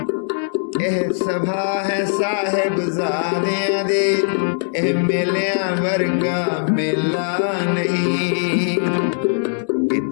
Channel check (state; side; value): silent; right; digital silence